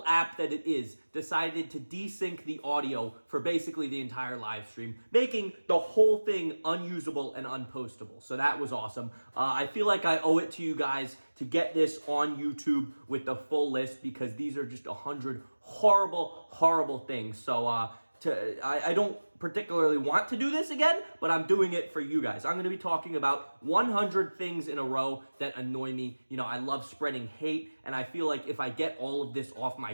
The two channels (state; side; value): inverted; both; correlation -1.00